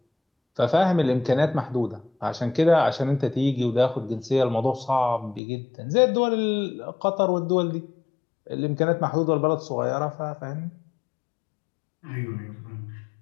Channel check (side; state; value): right; drops out; at 5.4 s